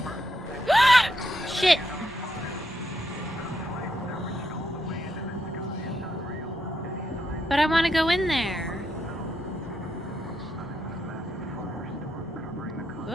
Shit! But I want to go in there.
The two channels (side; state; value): both; normal; correlation 0.80